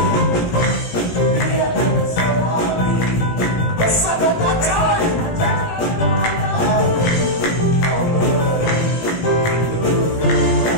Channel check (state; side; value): late; right; 17 ms